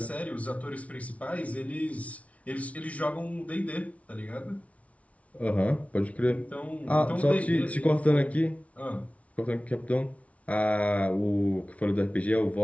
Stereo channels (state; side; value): late; right; 0.065 ms